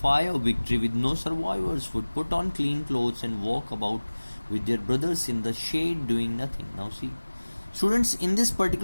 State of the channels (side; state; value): both; inverted; correlation -1.00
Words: fire, victory with no survivors, would put on clean clothes and walk about with their brothers in the shade doing nothing. Now see, students, in this